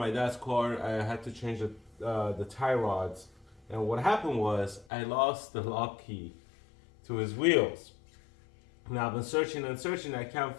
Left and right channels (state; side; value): drops out; right; at 4.9 s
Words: dad's car. I had to change the tie rods, and what happened was I lost the lock key to his wheels. Now I've been searching and searching. I can't